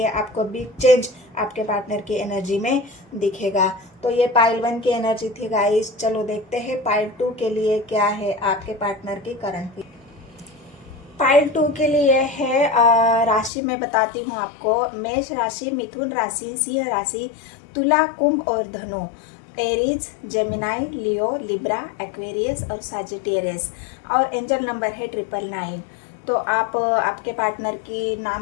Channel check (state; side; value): drops out; right; at 13.5 s